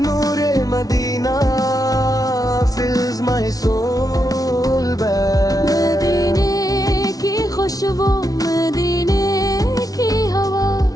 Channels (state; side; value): late; right; 0.18 ms